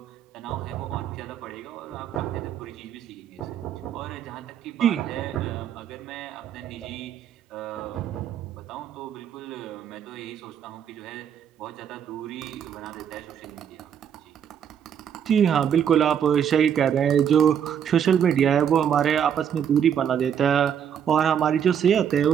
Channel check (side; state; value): left; quieter; 8.6 dB